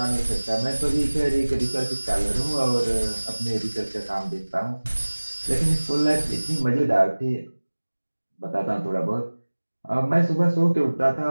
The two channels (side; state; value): both; inverted; correlation -1.00